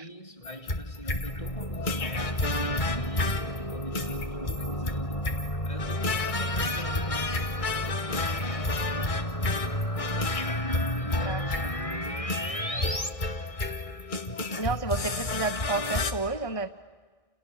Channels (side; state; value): right; late; 1.6 ms